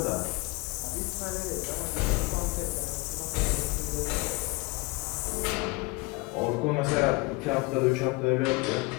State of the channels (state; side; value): quieter; right; 25.4 dB